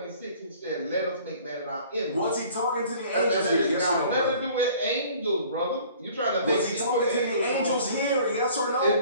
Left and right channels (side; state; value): both; inverted; correlation -0.51